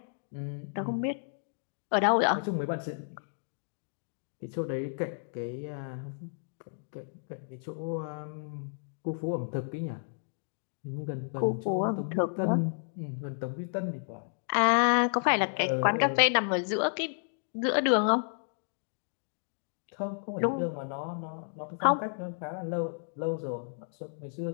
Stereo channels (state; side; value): silent; right; digital silence